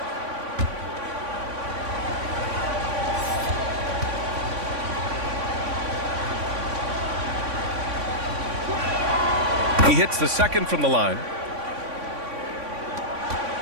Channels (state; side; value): late; left; 3.5 ms